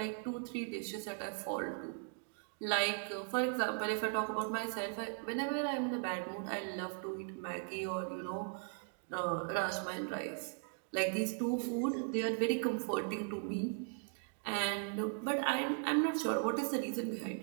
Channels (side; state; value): left; silent; 52 dB below the other